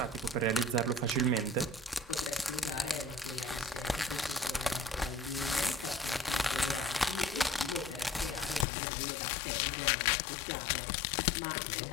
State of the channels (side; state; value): right; drops out; at 8.7 s